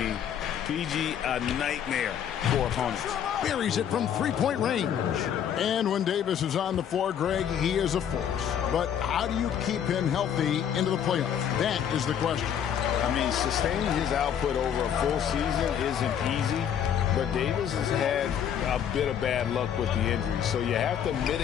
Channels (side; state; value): right; quieter; 9.0 dB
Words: PG, a nightmare for opponents. Buries it from three-point range. And when Davis is on the floor, Greg, he is a force. But how do you keep him healthy into the playoffs? That is the question. I mean, sustaining his output over a full season isn't easy, but Davis has had a bit of bad luck with the injury. So you have to